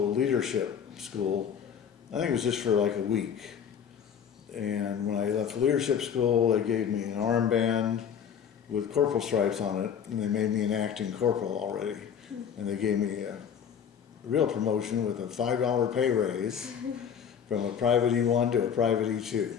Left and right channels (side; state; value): right; quieter; 7.9 dB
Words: leadership school. I think it was just for like a week. And when I left leadership school, they gave me an armband with corporal stripes on it, and they made me an acting corporal already. And they gave me a real promotion with a $5 pay raise from a private E1 to a private E2.